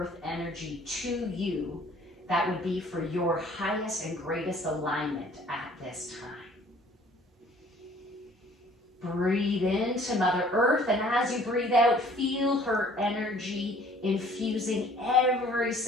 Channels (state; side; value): normal; both; correlation 0.55